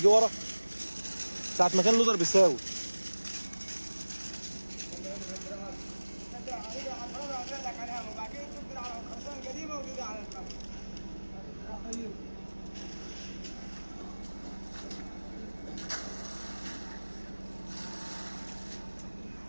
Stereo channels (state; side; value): inverted; both; correlation -1.00